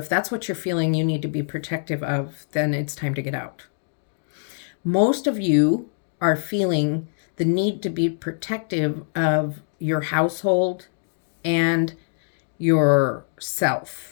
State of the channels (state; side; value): silent; right; digital silence